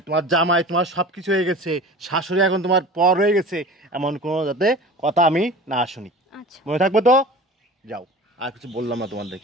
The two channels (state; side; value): normal; both; correlation 0.38